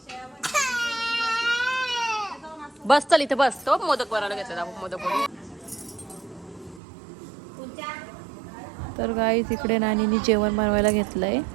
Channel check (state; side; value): drops out; left; at 6.8 s